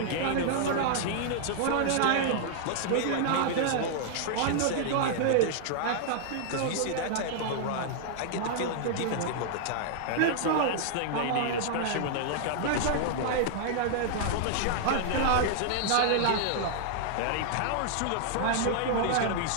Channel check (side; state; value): both; different; correlation -0.01